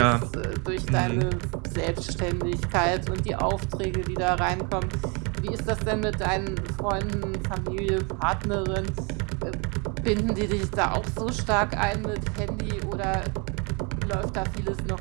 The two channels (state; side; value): quieter; left; 32.4 dB